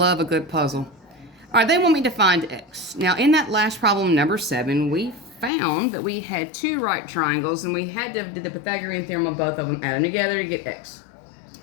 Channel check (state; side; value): drops out; right; at 5.5 s